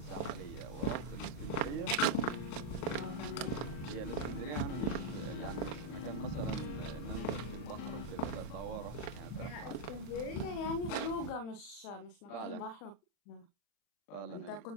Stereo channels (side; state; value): right; late; 39 ms